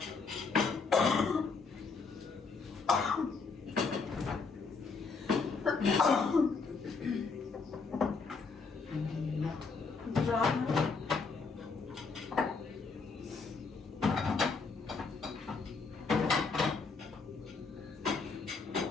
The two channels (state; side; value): quieter; right; 4.7 dB